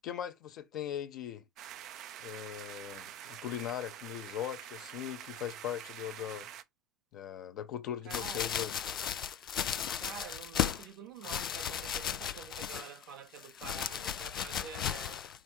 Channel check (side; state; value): right; quieter; 7.0 dB